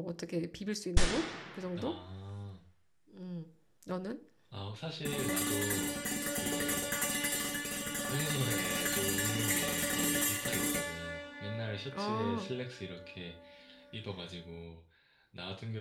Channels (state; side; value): identical; both; correlation 1.00